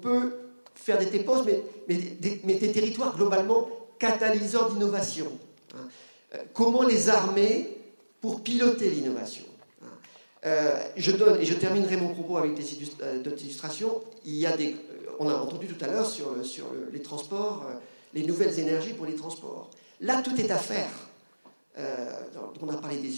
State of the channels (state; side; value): inverted; both; correlation -1.00